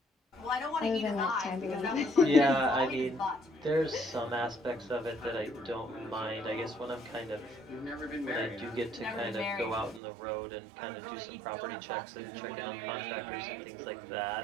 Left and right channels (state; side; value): drops out; left; at 10.0 s